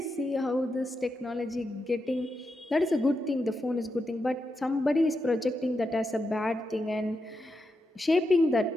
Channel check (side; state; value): both; normal; correlation 0.86